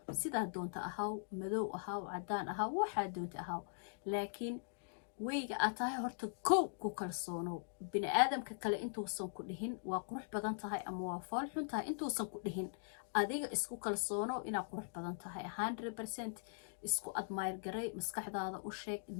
sidaa doonta ahaw, madow ahaw, cadaan ahaw, waxaa doonta ahaw, laakiin weyga aad tahay horta kow ku kalsoonow. bini aadamka kale intuusan ku dhihin waa qurux badan tahay ama waa fool xun tahay, intuusan ku dhihin adiga isku kalsoonow inaad qurux badan tahay 100%. isku admire garay, maskaxdaada u sheeg,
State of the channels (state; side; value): silent; right; digital silence